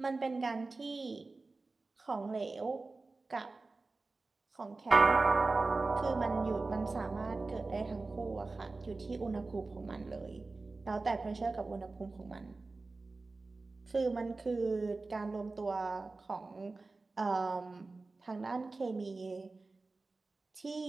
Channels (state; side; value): quieter; left; 3.6 dB